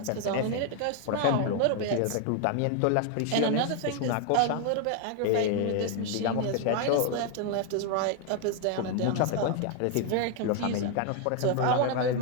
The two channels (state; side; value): different; both; correlation 0.01